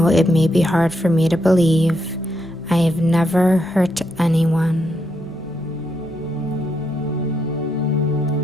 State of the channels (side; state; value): both; normal; correlation 0.80